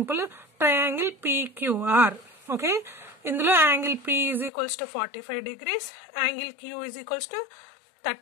Triangle PQR. ఓకే, ఇందులో angle P is equals to 45 degrees, angle Q is equals to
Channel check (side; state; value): right; drops out; at 4.5 s